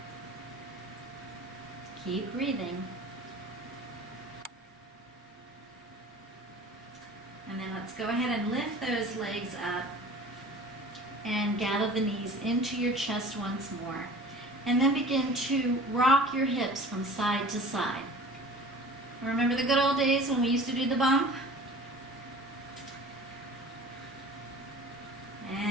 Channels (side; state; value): both; normal; correlation 0.43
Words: Keep breathing. And then let's go ahead and lift those legs up and gather the knees into your chest once more. And then begin to rock your hips from side to side. Remember the good old days when we used to do the bump?